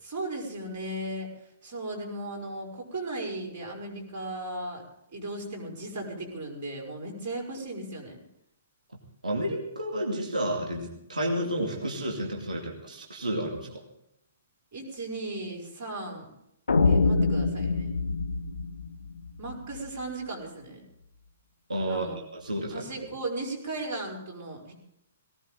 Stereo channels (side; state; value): both; inverted; correlation -0.71